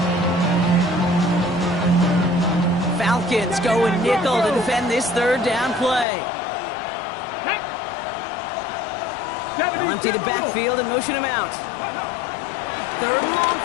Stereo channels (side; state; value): right; drops out; at 6.1 s